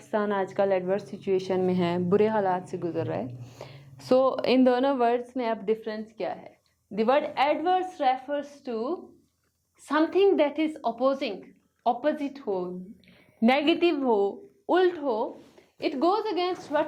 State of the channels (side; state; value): both; identical; correlation 1.00